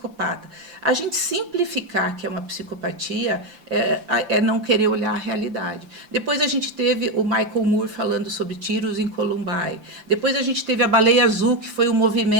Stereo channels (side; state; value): left; late; 5.9 ms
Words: A gente simplificar que é uma psicopatia é não querer olhar a realidade. Depois a gente teve o Michael Moore falando sobre tiros em Columbine. Depois a gente teve a Baleia Azul, que foi um